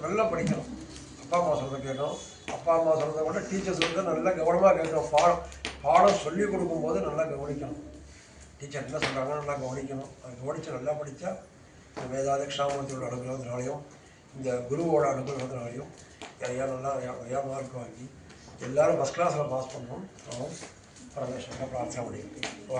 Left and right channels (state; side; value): identical; both; correlation 1.00